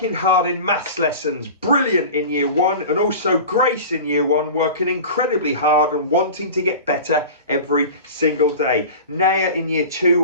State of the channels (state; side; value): inverted; both; correlation -0.35